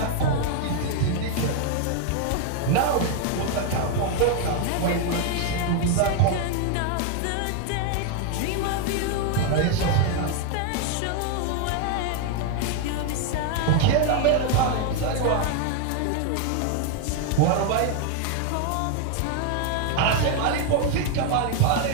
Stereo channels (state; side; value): different; both; correlation 0.01